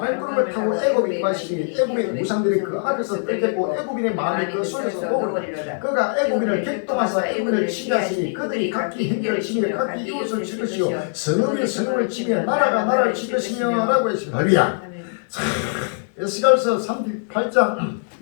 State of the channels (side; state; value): right; silent; digital silence